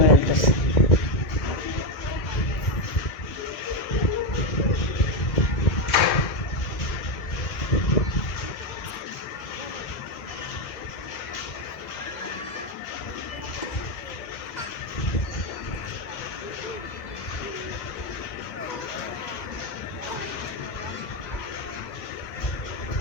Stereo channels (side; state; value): right; late; 2.0 ms